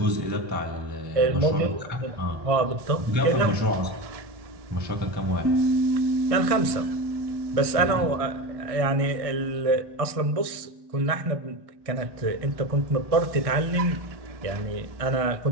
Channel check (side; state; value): left; late; 1.6 ms